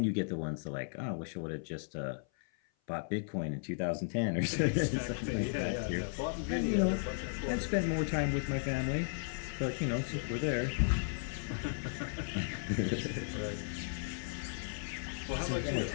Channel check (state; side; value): silent; right; 54 dB below the other